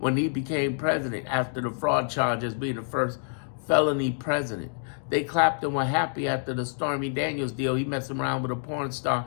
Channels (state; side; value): silent; right; digital silence